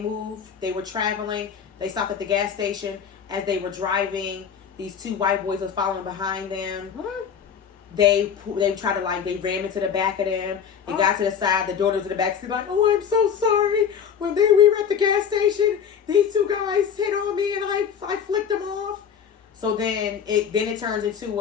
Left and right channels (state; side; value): quieter; right; 7.5 dB